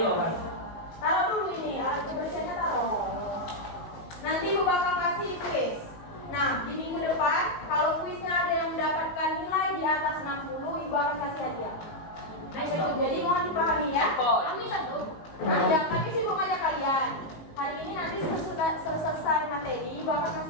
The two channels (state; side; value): late; right; 19 ms